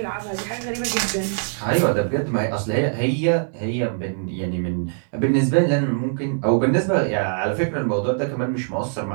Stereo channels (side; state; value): left; silent; digital silence